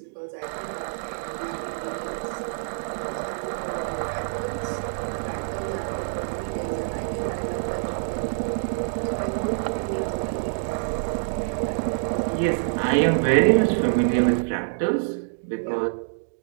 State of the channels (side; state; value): left; silent; digital silence